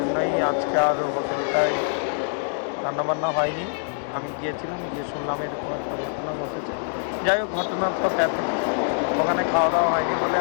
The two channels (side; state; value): right; silent; digital silence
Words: আজকে আর হোটেলটায় রান্নাবান্না হয়নি। আমি গিয়েছিলাম, গিয়ে শুনলাম এরকম একটা ঘটনা ঘটেছে। যাই হোক, ঘটনাটা ব্যাপক, ওখানে খাওয়া দাওয়া হয়নি বলে